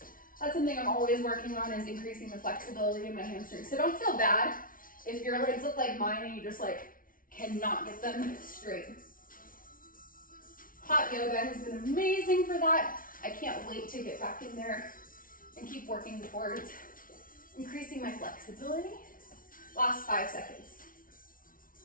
That's something I'm always working on, is increasing the flexibility in my hamstrings. So don't feel bad if your legs look like mine and you just like cannot get them straight. Hot yoga has been amazing for that. I can't wait to get back in there and keep working towards increasing my flexibility. Last 5 seconds.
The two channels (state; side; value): late; right; 0.40 ms